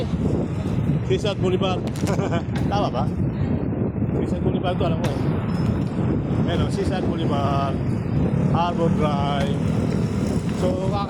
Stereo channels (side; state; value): both; identical; correlation 1.00